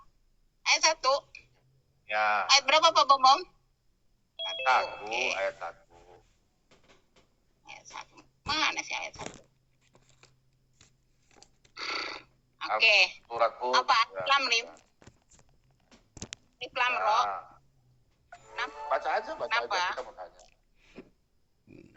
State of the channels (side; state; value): both; identical; correlation 1.00